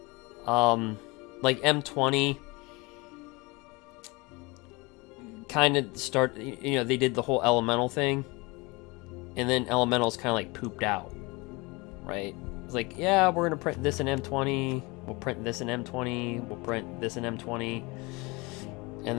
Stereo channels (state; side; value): quieter; right; 25.6 dB